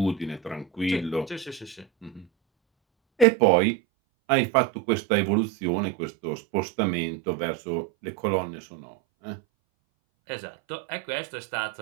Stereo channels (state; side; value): drops out; left; at 3.2 s